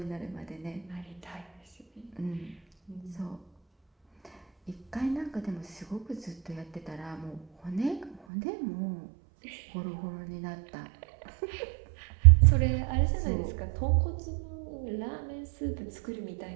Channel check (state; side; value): drops out; left; at 8.2 s